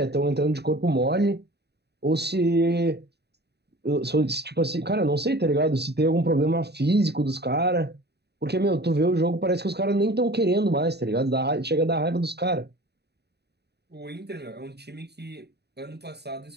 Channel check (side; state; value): left; late; 0.48 ms